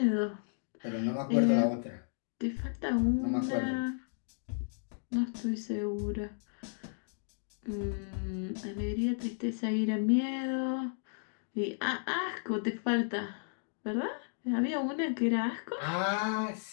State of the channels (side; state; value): right; silent; digital silence